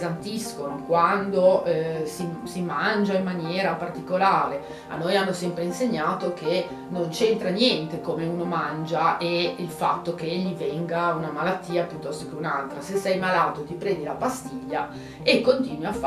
quando si mangia in maniera particolare, a noi hanno sempre insegnato che non c'entra niente come uno mangia e il fatto che gli venga una malattia piuttosto che un'altra. Se sei malato ti prendi la pastiglia e continui a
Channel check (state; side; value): identical; both; correlation 1.00